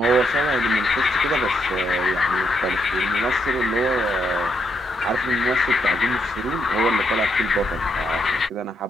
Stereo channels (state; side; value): normal; both; correlation 0.78